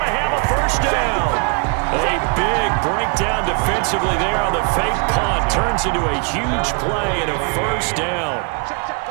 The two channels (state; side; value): quieter; left; 34.8 dB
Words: to have a first down. A big breakdown defensively there on the fake punt. Turns into a huge play and a first down.